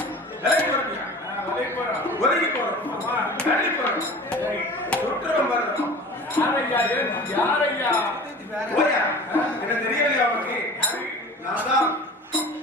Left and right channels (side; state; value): both; normal; correlation 0.40